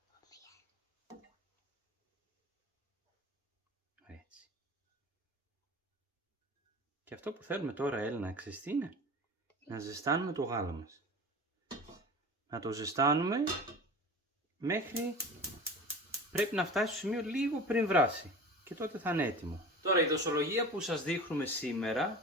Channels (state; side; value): normal; both; correlation 0.35